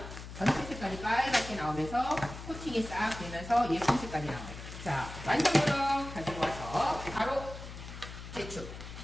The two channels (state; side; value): noise; left; hum, 11 dB below the sound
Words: 전체 색깔이 빨갛게 나오면서 코팅이 싹 되면서 예쁜 색깔이 나와요. 자, 완성으로 가지고 와서 바로 제축.